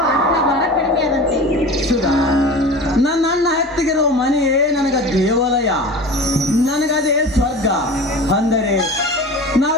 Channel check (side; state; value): both; normal; correlation 0.35